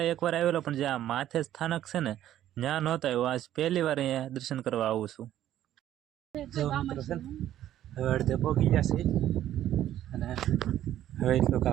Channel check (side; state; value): left; quieter; 12.2 dB